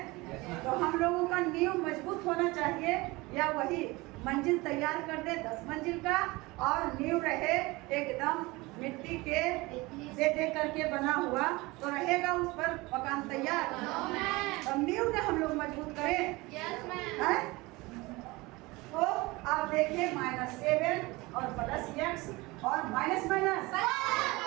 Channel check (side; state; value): left; quieter; 22.5 dB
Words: तो हम लोगों का नींव मजबूत होना चाहिए, या वही मंजिल तैयार कर दे 10 मंजिल का और नींव रहे एकदम मिट्टी के दे करके बना हुआ, तो रहेगा उस पर मकान तैयार। अब नींव ने हम लोग मजबूत करें, हैं? तो आप देखिए -7 और +x और माइनस